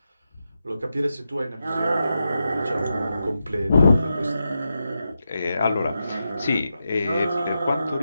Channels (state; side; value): inverted; both; correlation -0.88